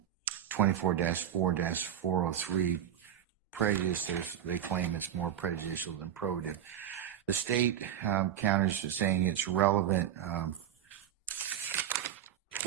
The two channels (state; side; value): quieter; left; 10.2 dB